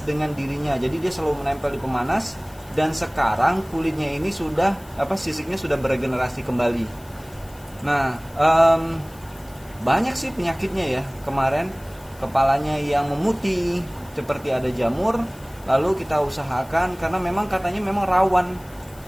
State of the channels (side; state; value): left; noise; hiss, 24 dB below the sound